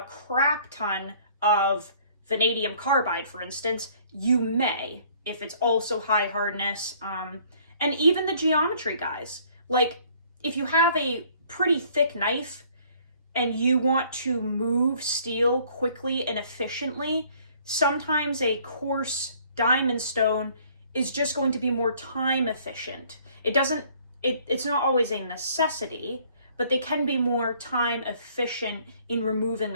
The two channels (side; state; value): both; inverted; correlation -0.58